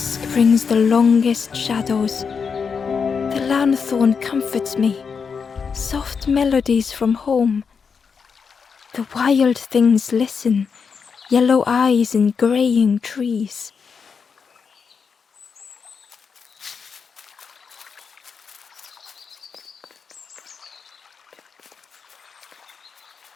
brings the longest shadows. The lanthorn comforts me. Soft melodies from home. The wild things listen. Yellow eyes in greying trees.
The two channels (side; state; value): right; quieter; 5.9 dB